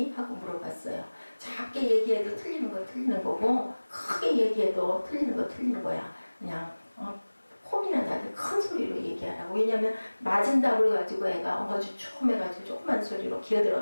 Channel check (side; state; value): both; inverted; correlation -1.00